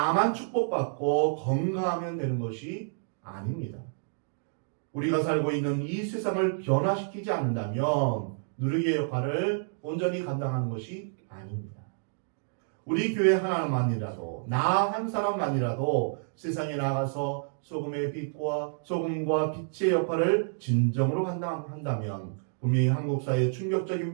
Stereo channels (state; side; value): silent; left; digital silence